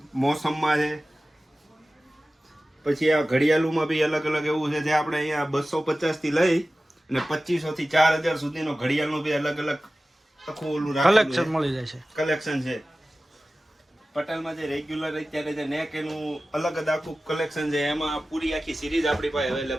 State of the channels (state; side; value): normal; both; correlation 0.96